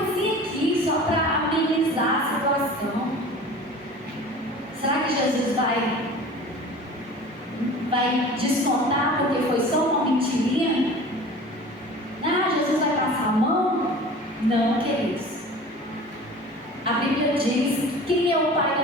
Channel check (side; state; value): both; normal; correlation 0.40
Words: aqui, só para amenizar a situação. Será que Jesus vai descontar porque foi só uma mentirinha? Ah, Jesus vai passar a mão? Não, queridos. A Bíblia diz: quem é o pai